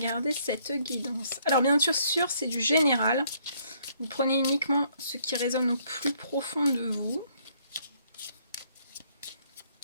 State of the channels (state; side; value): inverted; both; correlation -0.67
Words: cette guidance? Alors bien sûr, c'est du général. Vous prenez uniquement ce qui résonne au plus profond de vous.